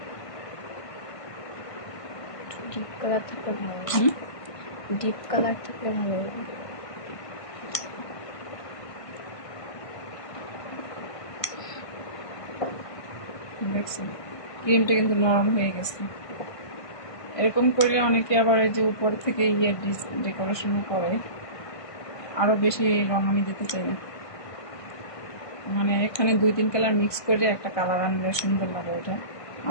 ডিপ কালার থাকলে ভালো লাগে, ডিপ কালার থাকলে ভালো লাগে। দেখছেন ক্রিমটা কিন্তু নরম হয়ে গেছে। এরকম করলে অনেকে আবার এই যে উপর থেকে ডেকোরেশনও করে, আরো বেশি রং আমি দিতে চাই না। মানে এখানে 2-3 কালার মিক্স করে একটা কালার আনলে সুন্দর লাগে এটা।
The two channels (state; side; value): late; right; 1.5 ms